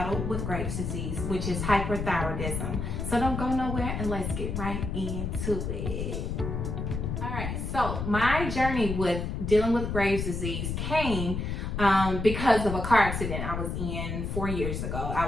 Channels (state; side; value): noise; left; rumble, 3 dB below the sound